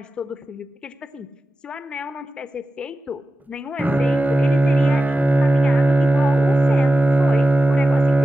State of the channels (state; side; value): normal; both; correlation 0.93